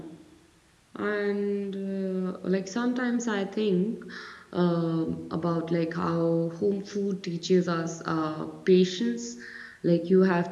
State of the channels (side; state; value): both; identical; correlation 1.00